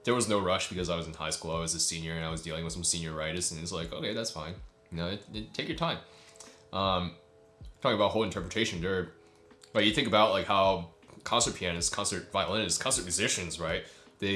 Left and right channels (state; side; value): identical; both; correlation 1.00